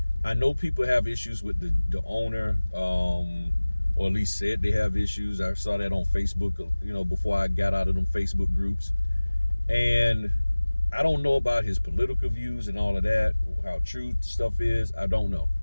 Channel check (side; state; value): both; inverted; correlation -1.00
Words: I know people have issues with the owner, or at least said they have issues. I saw that on Facebook, before I got out of them Facebook groups. And I don't know about his political views and all of that, how true stuff is. I don't know.